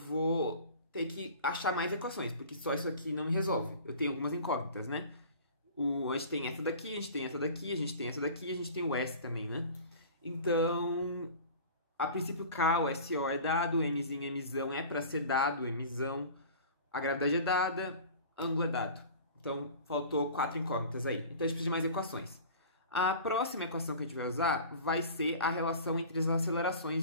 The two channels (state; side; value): inverted; both; correlation -0.40